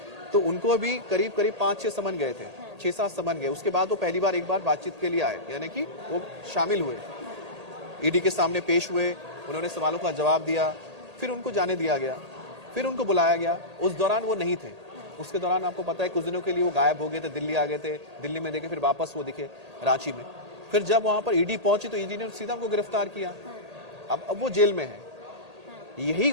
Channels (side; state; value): left; late; 1.8 ms